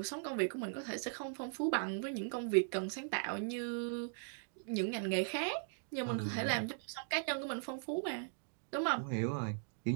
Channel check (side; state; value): left; silent; digital silence